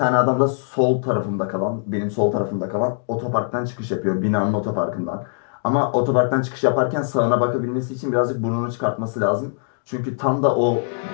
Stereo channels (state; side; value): silent; right; digital silence